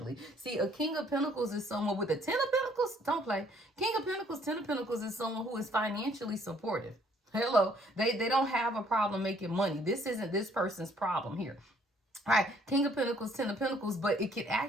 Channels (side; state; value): both; normal; correlation 0.63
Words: See, a King of Pentacles is someone with a 10 of Pentacles. Don't play. King of Pentacles, 10 of Pentacles is someone who is financially supportive. Hello, they don't have a problem making money. This isn't this person's problem here. All right, King of Pentacles, 10 of Pentacles, but it can